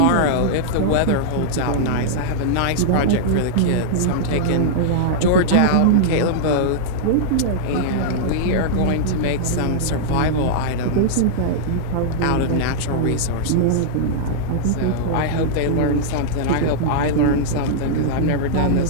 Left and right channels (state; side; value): different; both; correlation -0.02